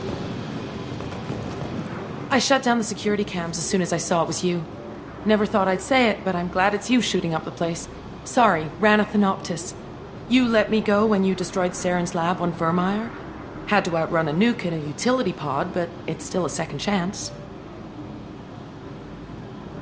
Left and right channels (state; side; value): identical; both; correlation 1.00